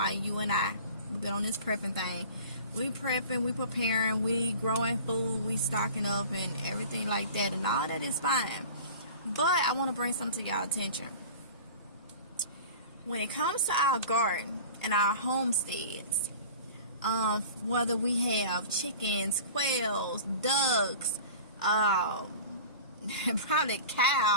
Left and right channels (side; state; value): both; inverted; correlation -0.39